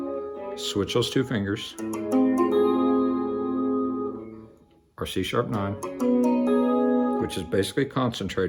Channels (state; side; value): identical; both; correlation 1.00